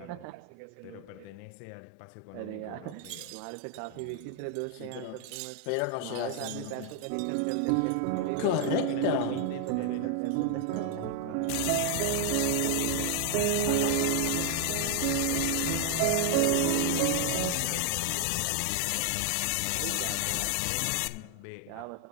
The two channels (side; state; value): both; different; correlation 0.00